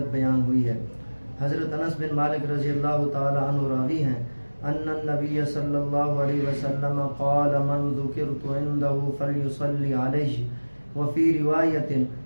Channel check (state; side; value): inverted; both; correlation -1.00